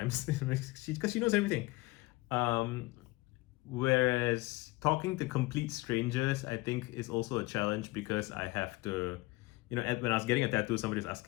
because she knows everything. Whereas talking to complete strangers, I think, is also a challenge, because I have to, when I was getting a tattoo, somebody was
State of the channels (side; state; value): right; quieter; 21.5 dB